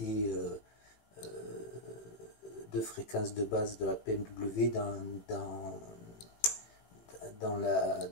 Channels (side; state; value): right; late; 18 ms